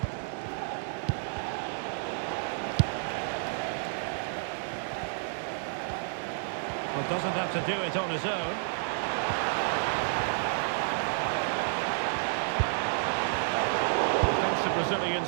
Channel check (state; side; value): silent; left; digital silence